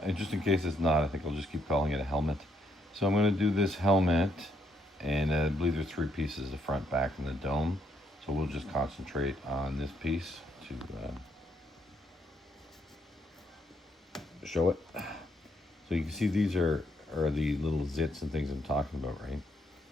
just in case it's not, I think I'll just keep calling it a helmet. So I'm gonna do this helmet, and I believe there's 3 pieces: the front, back, and the dome. So we'll just concentrate on this piece to show it. So you can see these are the little zits and things I'm talking about, right?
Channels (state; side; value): normal; both; correlation 0.73